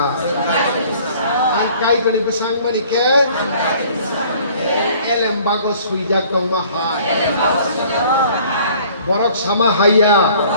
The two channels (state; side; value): inverted; both; correlation -0.54